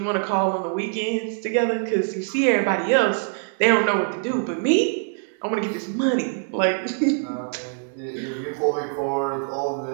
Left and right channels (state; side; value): silent; left; digital silence